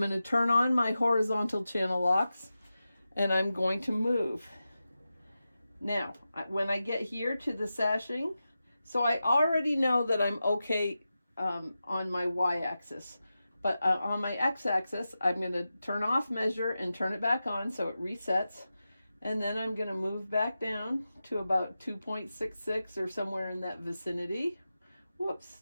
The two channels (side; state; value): both; inverted; correlation -0.92